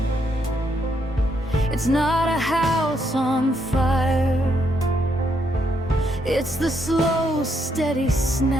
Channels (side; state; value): both; normal; correlation 0.75